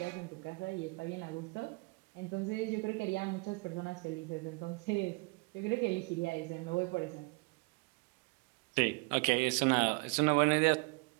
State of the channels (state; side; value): quieter; left; 28.7 dB